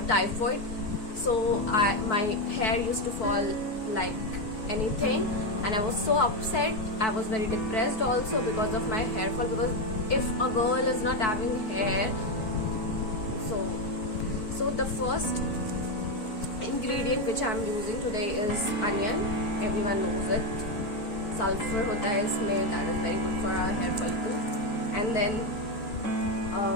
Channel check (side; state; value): right; late; 4.6 ms